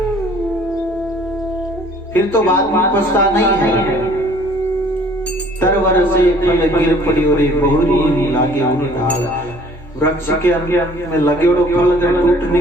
फिर तो बाद में पछता नहीं है। तरवर से फल गिर पड़ी और बहुरी लागे उन डाल। वृक्ष के अंदर में लगे और फल अगर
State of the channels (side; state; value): both; normal; correlation 0.55